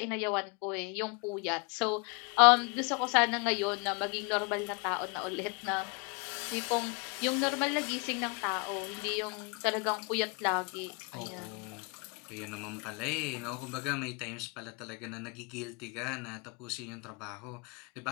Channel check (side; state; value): right; quieter; 31.3 dB